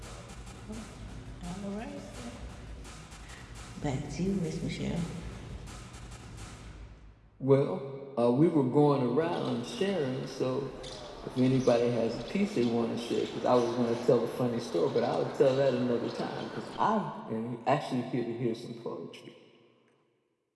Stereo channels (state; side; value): identical; both; correlation 1.00